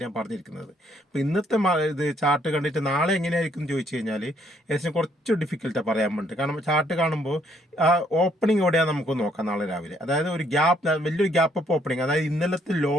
ഞാൻ പറഞ്ഞിരിക്കുന്നത്. അപ്പോൾ ഇന്നത്തെ ഇത് ചാർട്ട് കണ്ടിട്ട് നാളെ എങ്ങനെയായിരിക്കും എന്ന് ചോദിച്ചു കഴിഞ്ഞാൽ ഏകദേശം കുറച്ച് ഡിഫിക്കൽട്ടാണ് പറയാൻ വേണ്ടി. കാരണം ചാർട്ട് കാണുമ്പോൾ ആ ഓപ്പണിംഗ് എവിടെയാണ് നമുക്ക് നോക്കാം നാളെ രാവിലെ. അതായത് ഒരു ഗ്യാപ്പ്, വലിയൊരു ഗ്യാപ്പ് അപ്പ് ഓപ്പണിംഗ്, അതായത് ഇന്നലത്തെ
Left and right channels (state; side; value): normal; both; correlation 0.68